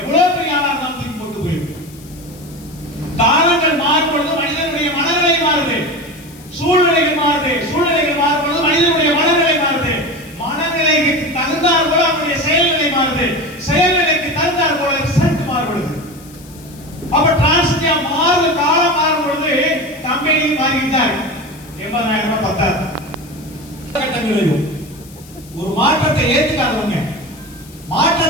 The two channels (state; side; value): noise; left; hiss, 22 dB below the sound